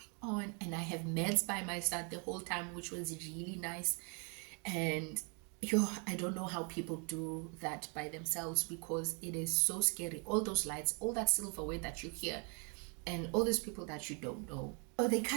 on? And I have meds by my side the whole time, which was really nice. And I don't know how people do that by themselves, because it is so scary. All those lights, all that silverware that you hear, and all these people that you don't know. Oh, they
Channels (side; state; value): left; quieter; 36.1 dB